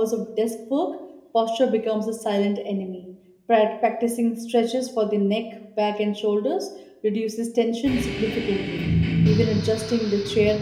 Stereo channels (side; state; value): both; identical; correlation 1.00